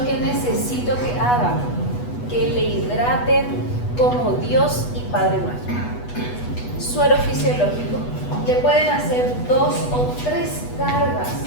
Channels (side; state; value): right; late; 8.2 ms